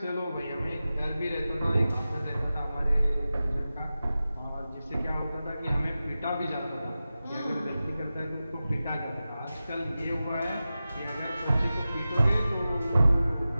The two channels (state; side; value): inverted; both; correlation -0.95